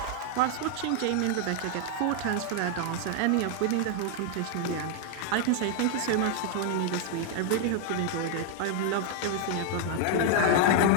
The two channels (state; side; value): different; both; correlation 0.00